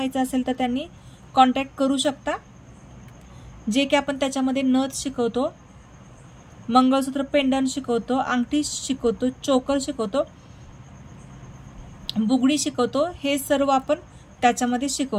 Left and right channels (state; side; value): identical; both; correlation 1.00